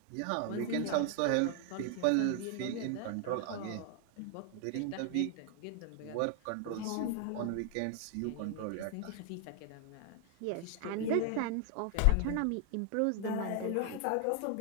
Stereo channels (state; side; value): different; both; correlation 0.00